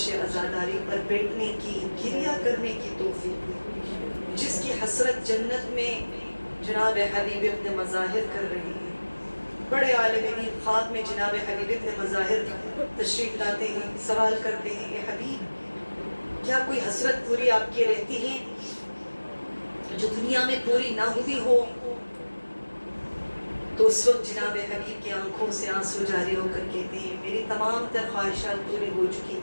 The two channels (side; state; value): both; inverted; correlation -1.00